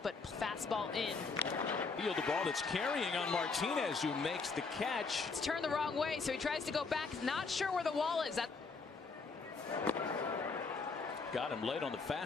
but fastball in. Field the ball that's carrying on Martinez, who makes the catch. It's turned the wrong way, so he tries to go back. Not sure where the wall is. Got him late on the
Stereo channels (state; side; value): quieter; right; 4.5 dB